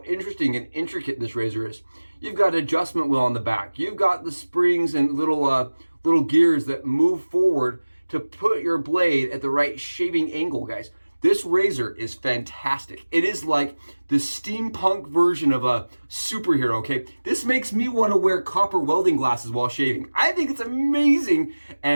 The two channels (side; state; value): both; inverted; correlation -1.00